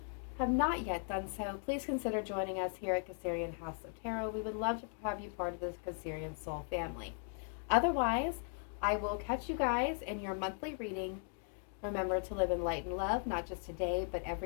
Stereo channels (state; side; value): silent; right; 53 dB below the other